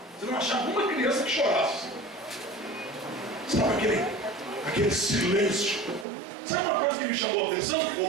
Você não achava uma criança que chorasse. Sabe aquele silêncio. Sabe uma coisa que me chamou a atenção,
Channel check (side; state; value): left; drops out; at 6.1 s